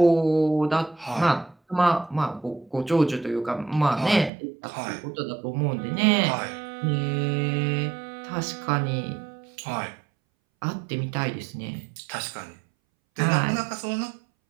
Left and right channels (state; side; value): drops out; left; at 4.3 s